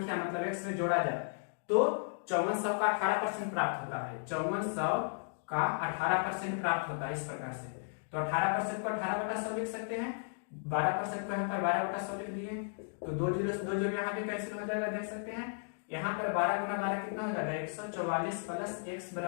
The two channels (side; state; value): right; silent; digital silence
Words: मतलब x में जोड़ा जाए तो 5400 का 18% प्राप्त होता है। 5400 का 18% प्राप्त होता है इस प्रकार से। तो 18% को 18/100 लिख सकते हैं, 12% को यहाँ पर 12/100 लिख दिए, तो 2 जीरो से 2 जीरो यहाँ भी कैंसिल हो जाएगा, देख सकते हैं। यहाँ पर 12 गुना 12 कितना हो जाएगा 144 प्लस x